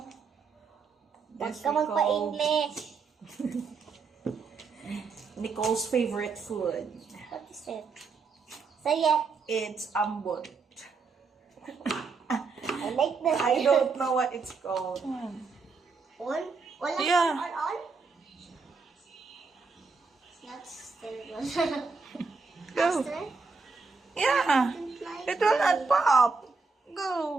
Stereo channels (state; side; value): quieter; left; 4.6 dB